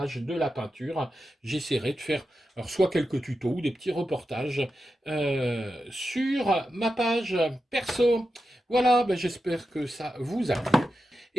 de la peinture. J'essaierai de faire alors, soit quelques tutos ou des petits reportages sur ma page perso. Voilà, ben, j'espère que ça vous a plu.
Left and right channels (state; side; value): normal; both; correlation 0.90